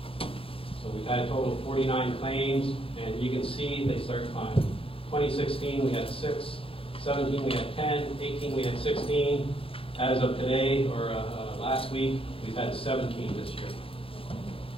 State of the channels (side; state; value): right; late; 0.27 ms